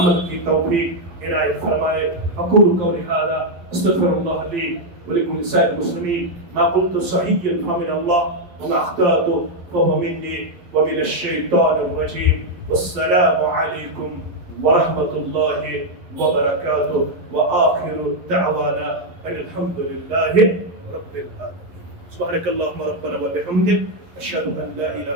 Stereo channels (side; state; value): left; late; 11 ms